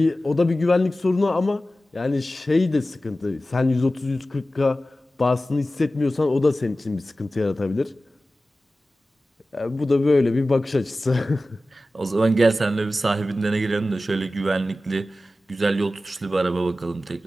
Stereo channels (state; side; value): normal; both; correlation 0.95